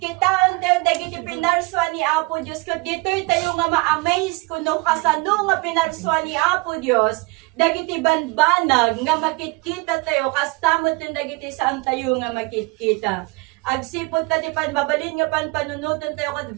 tayo dagiti pinarswa ni Apo Dios, ket ditoy tayo nga ma-amaze kuno kasano nga pinarswa ni Apo Dios, dagiti banbanag nga makikita tayo kastamot ng dagiti saan tayo nga makikita. Agsipot ta di pan mabalin nga pan panunutan tayo kat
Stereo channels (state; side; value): quieter; left; 26.1 dB